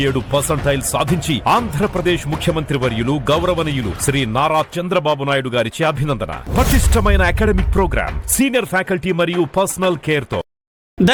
సాధించి ఆంధ్రప్రదేశ్ ముఖ్యమంత్రి వర్యులు గౌరవనీయులు శ్రీ నారా చంద్రబాబు నాయుడు గారిచే అభినందన. పటిష్టమైన అకాడమిక్ ప్రోగ్రామ్, సీనియర్ ఫ్యాకల్టీ మరియు పర్సనల్ కేర్ తో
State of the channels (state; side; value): identical; both; correlation 1.00